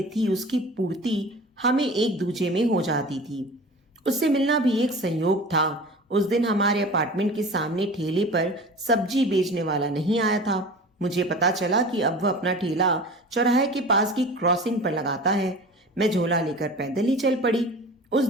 थी, उसकी पूर्ति हमें एक दूजे में हो जाती थी। उससे मिलना भी एक संयोग था। उस दिन हमारे अपार्टमेंट के सामने ठेले पर सब्जी बेचने वाला नहीं आया था। मुझे पता चला कि अब वह अपना ठेला चौराहे के पास की क्रॉसिंग पर लगाता है। मैं झोला लेकर पैदल ही चल पड़ी। उस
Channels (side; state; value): both; normal; correlation 0.38